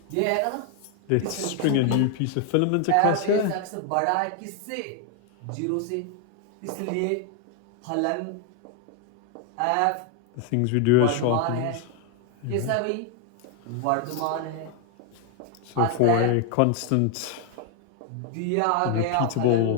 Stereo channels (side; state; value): both; different; correlation 0.01